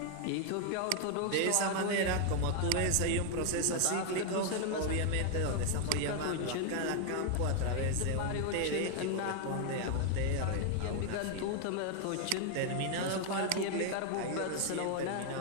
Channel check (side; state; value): both; different; correlation 0.00